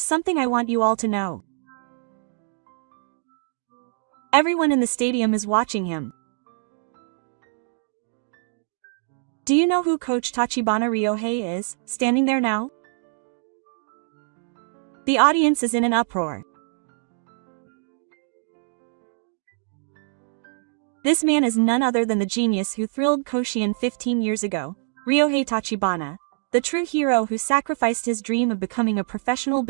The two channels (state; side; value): silent; left; digital silence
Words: I want you all to know. Everyone in the stadium is watching him. Do you know who Coach Tachibana Ryohei is, standing there now? The audience is in an uproar. This man is none other than the genius who thrilled Koshien 15 years ago, Ryohei Tachibana, the true hero who sacrificed his dream of becoming a professional